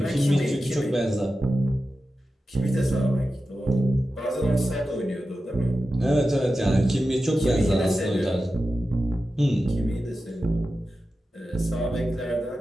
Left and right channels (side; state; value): both; normal; correlation 0.92